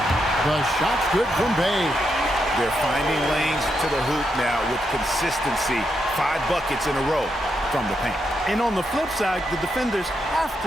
shot's good from Bay. They're finding lanes to the hoop now with consistency. 5 buckets in a row from the paint. And on the flip side, the defenders have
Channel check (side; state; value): both; normal; correlation 0.82